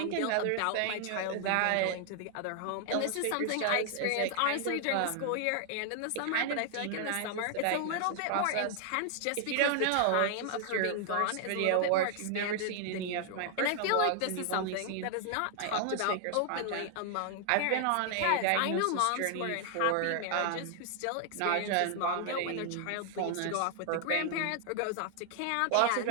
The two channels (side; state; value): both; different; correlation 0.00